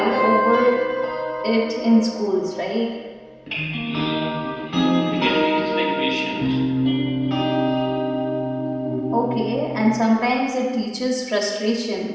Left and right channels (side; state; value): both; identical; correlation 1.00